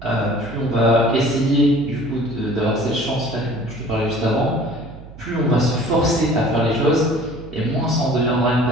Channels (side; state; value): right; noise; hum, 17 dB below the sound